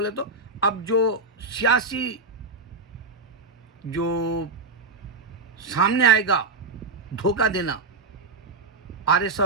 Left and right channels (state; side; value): quieter; left; 3.7 dB